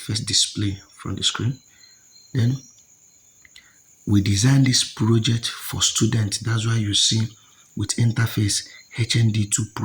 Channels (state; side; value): identical; both; correlation 1.00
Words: display from the screen. Then we designed this project for students. That's why you see with interface HND2